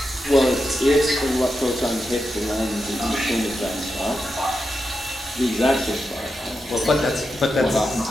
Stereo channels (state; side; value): normal; both; correlation 0.88